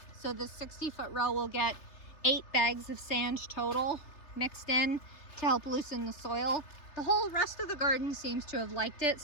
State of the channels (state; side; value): late; right; 3.3 ms